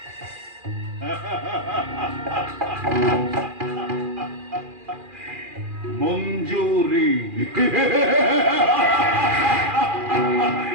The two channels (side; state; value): left; late; 2.4 ms